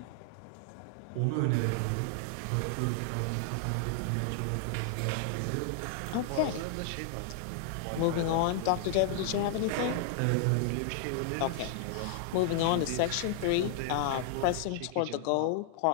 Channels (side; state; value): both; different; correlation -0.01